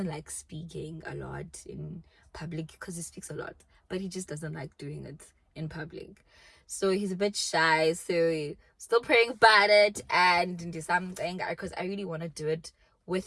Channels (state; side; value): identical; both; correlation 1.00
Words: like speaking a lot in public because he speaks a lot, but he just doesn't like doing it in public. So he's a bit shy. So still praying about it and do something because I really want to do it with